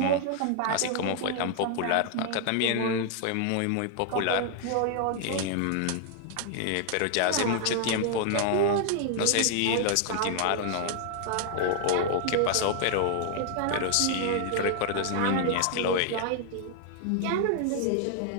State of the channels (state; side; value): different; both; correlation 0.00